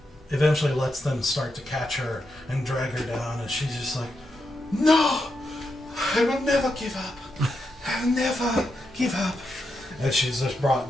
eventually lets them start to catch her and drag her down, and she's just like, "No, I will never give up. I will never give up." And she's just brought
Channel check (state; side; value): normal; both; correlation 0.85